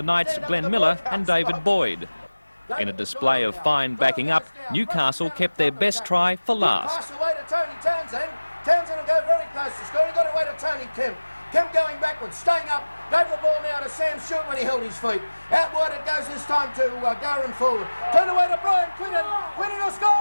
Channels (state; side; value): inverted; both; correlation -1.00